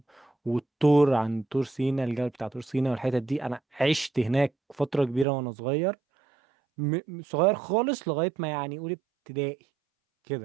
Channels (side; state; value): left; drops out; at 5.2 s